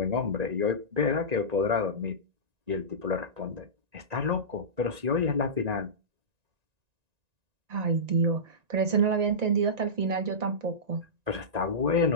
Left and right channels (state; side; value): late; left; 1.9 ms